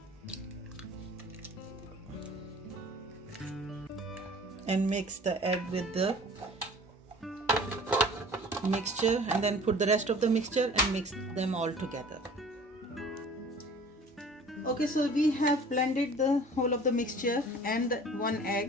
And mix the egg with the mixture, and then put the rest of the mixture and mix them all together. Okay, so we have blended the whole of the mixture and 1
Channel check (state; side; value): normal; both; correlation 0.46